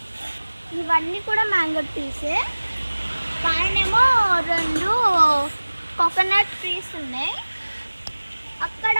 ఇవన్నీ కూడా మ్యాంగో ట్రీసే. పైనేమో 2 కోకోనట్ ట్రీస్ ఉన్నాయి.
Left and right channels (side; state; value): both; inverted; correlation -1.00